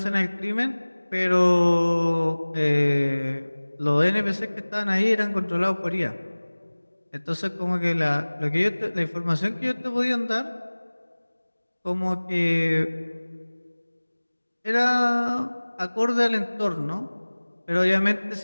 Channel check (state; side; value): inverted; both; correlation -1.00